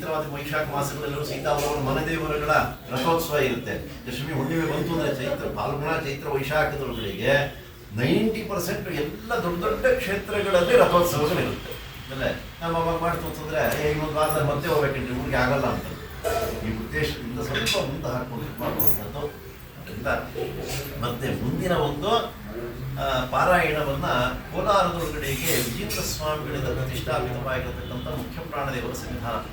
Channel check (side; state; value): both; identical; correlation 1.00